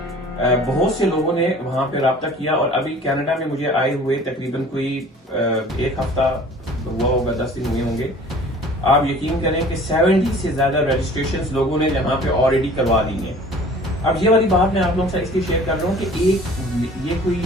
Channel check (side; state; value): both; normal; correlation 0.48